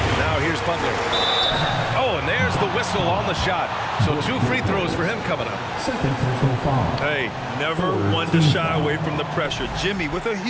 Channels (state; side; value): identical; both; correlation 1.00